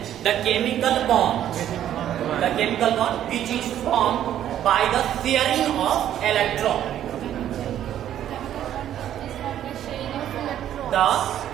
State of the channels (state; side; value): quieter; left; 11.1 dB